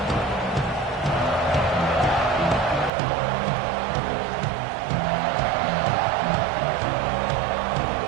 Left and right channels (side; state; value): left; drops out; at 2.9 s